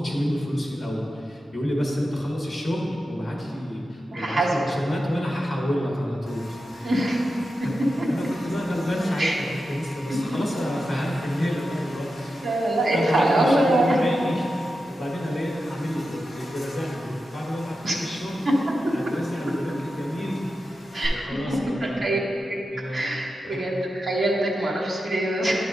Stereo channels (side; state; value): both; normal; correlation 0.90